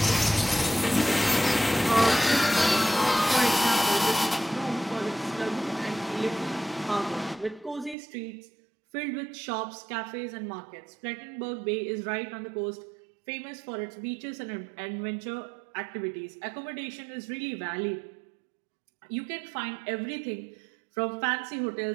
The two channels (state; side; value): drops out; left; at 8.0 s